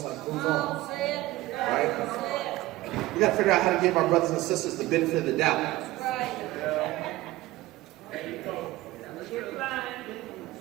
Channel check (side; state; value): left; quieter; 17.8 dB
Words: like move on. Right? We gotta figure out how to give our brothers and sisters the benefit of the doubt.